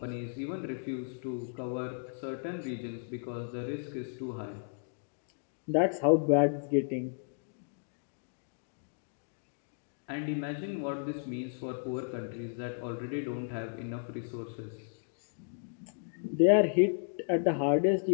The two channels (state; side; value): silent; right; digital silence